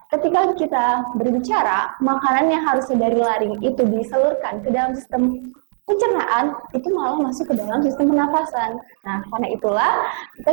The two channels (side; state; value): left; silent; digital silence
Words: ketika kita berbicara, makanan yang harusnya dari laring itu disalurkan ke dalam sistem pencernaan itu malah masuk ke dalam sistem pernafasan. Nah, karena itulah kita